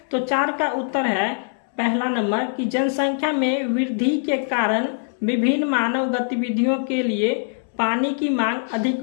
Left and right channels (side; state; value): right; silent; 64 dB below the other